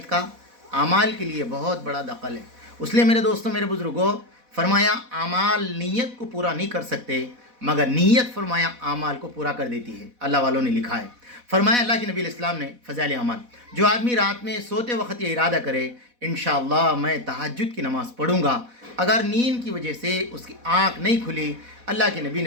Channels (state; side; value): late; left; 4.1 ms